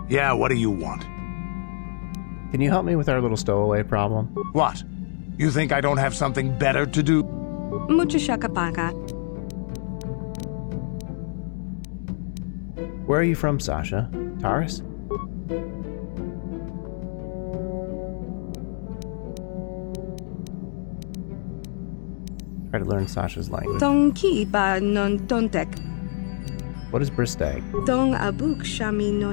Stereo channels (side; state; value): right; silent; digital silence